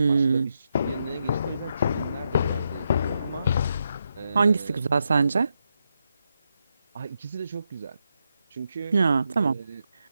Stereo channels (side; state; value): both; inverted; correlation -0.83